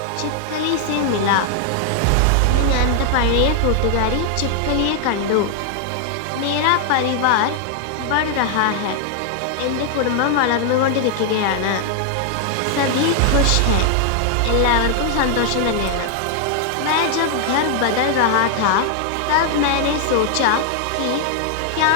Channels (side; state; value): both; different; correlation 0.00